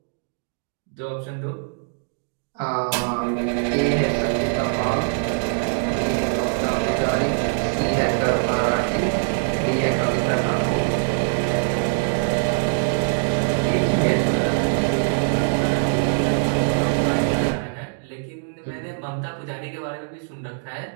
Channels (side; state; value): left; silent; digital silence